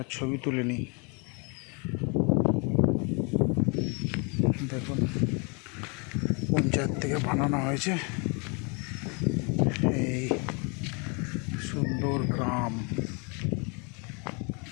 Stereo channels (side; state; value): right; quieter; 33.3 dB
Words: ছবি তুলে নিই। দেখুন পঞ্চায়েত থেকে বানানো হয়েছে এই সুন্দর গ্রাম।